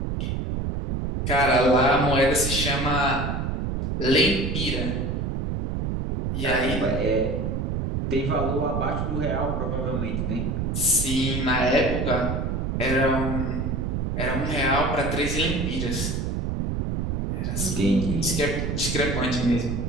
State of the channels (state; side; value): noise; right; rumble, 1 dB below the sound